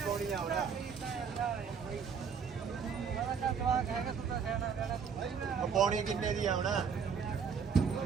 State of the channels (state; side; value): quieter; left; 6.4 dB